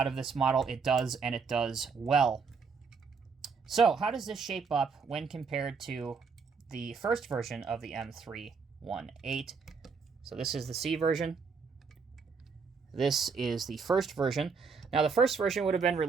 of this model, it does, and it does well. So how does this shape up when compared to the first version of the M318? So this is the C version. This is the first version. Now the first version would have been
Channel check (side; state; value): left; quieter; 5.3 dB